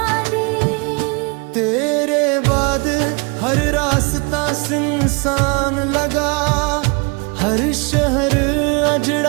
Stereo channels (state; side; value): quieter; left; 31.0 dB